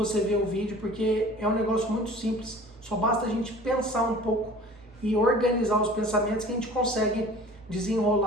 vê o vídeo, porque é um negócio muito simples. Só basta a gente pensar um pouco e organizar os pensamentos que a gente consegue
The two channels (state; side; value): normal; both; correlation 0.45